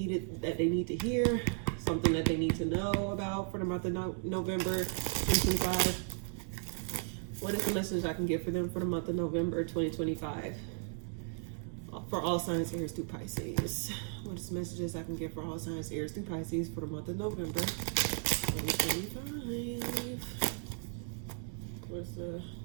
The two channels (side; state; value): left; silent; 54 dB below the other